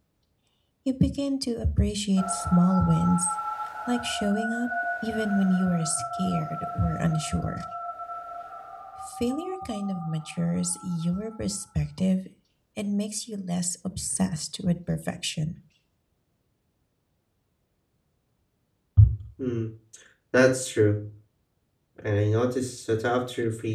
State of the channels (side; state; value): both; identical; correlation 1.00